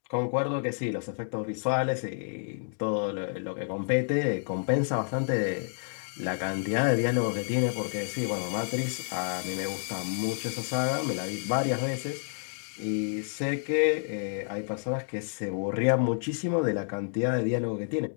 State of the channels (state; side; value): silent; right; digital silence